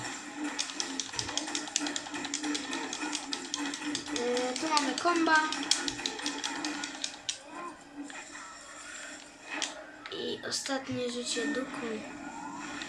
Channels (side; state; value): both; identical; correlation 1.00